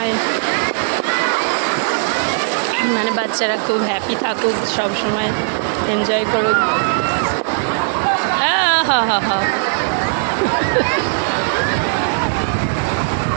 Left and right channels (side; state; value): left; silent; digital silence